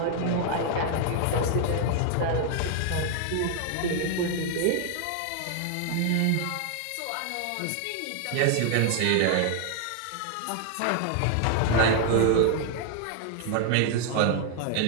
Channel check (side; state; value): both; different; correlation 0.00